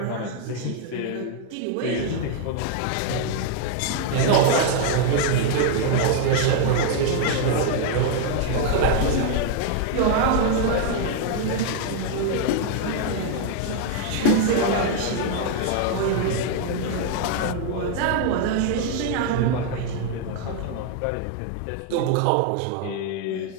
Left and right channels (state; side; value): different; both; correlation 0.00